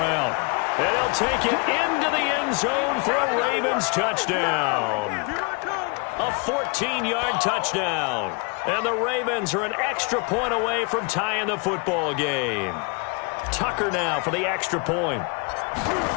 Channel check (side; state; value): right; quieter; 32.7 dB